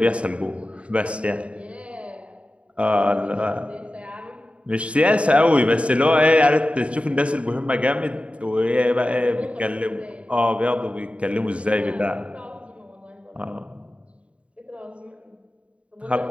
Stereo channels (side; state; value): left; late; 0.061 ms